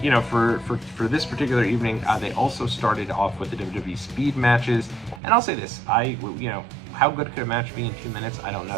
for this particular evening, they also started off with the WWE speed matches. And I'll say this, how good could a match be in 2 minutes? I don't know.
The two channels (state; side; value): drops out; left; at 5.2 s